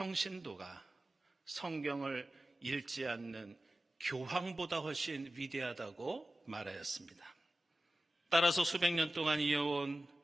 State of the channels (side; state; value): both; normal; correlation 0.95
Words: 성경을 읽지 않는 교황보다 훨씬 위대하다고 말하였습니다. 따라서 수백 년 동안 이어온